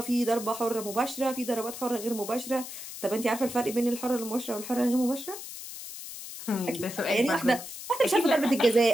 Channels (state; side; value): noise; left; hiss, 11 dB below the sound